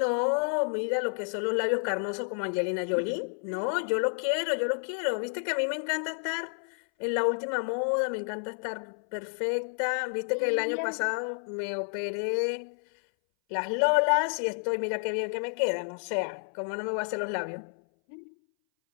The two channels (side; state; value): right; silent; 58 dB below the other